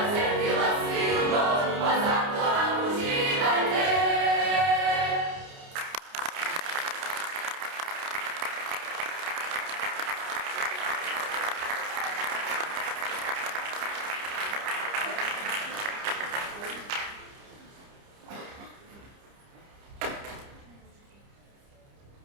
cetila silno, pa zato nam uživajte.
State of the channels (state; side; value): late; left; 30 ms